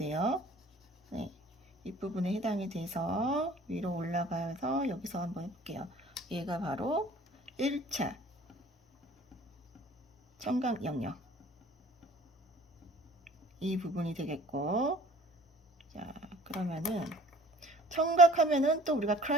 네, 윗부분에 해당이 돼서 위로 올라가서 여기서 한번 해볼게요. 얘가 바로 1차 청각 영역. 이 부분이 되겠고, 자, 그러면은 청각하면은 또 우리가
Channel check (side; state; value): both; normal; correlation 0.50